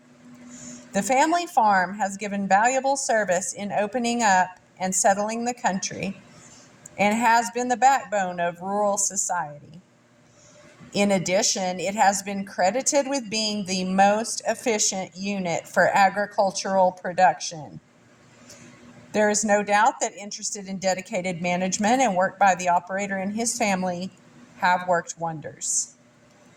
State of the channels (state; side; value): identical; both; correlation 1.00